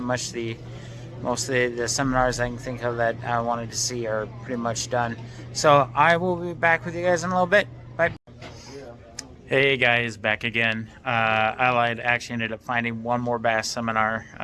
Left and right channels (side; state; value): both; identical; correlation 1.00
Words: much most of the seminars I can think of that I wanted to see are pretty much done. So I will be back with you guys in a little bit. Bye. Hey guys, back again. I actually ended up finding one more bass seminar.